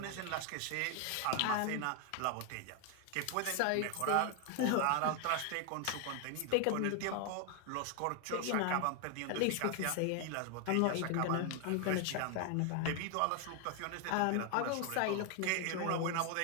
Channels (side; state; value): both; different; correlation 0.00